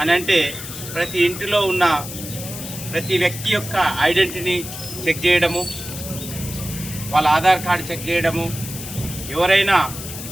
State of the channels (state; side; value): noise; left; hiss, 10 dB below the sound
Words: అని అంటే ప్రతి ఇంటిలో ఉన్న ప్రతి వ్యక్తి యొక్క ఐడెంటిటీని చెక్ చేయడము, వాళ్ళ ఆధార్ కార్డు చెక్ చేయడము, ఎవరైనా